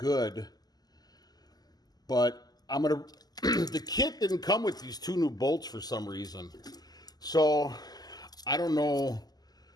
But I'm going to... The kit didn't come with these 2 new bolts for some reason. So I don't know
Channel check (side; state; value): right; late; 0.19 ms